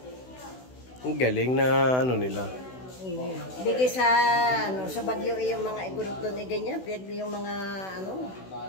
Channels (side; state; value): right; late; 16 ms